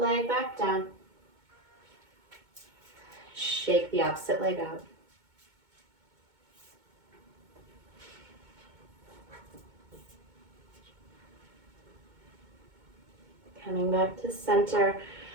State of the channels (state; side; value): late; left; 2.2 ms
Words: leg back down. Shake the opposite leg out. Coming back to center.